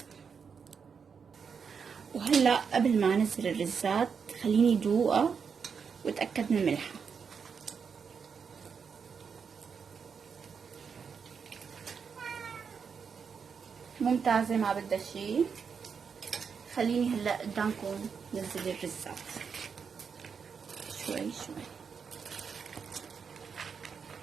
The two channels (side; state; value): left; quieter; 6.2 dB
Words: وهلا قبل ما انزل الرزات خليني دوقها واتاكد من ملحها. ممتازة ما بدها شي. خليني هلا قدامكم ننزل الرزات شوي شوي.